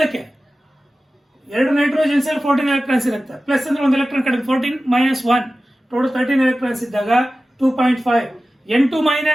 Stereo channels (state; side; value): normal; both; correlation 0.95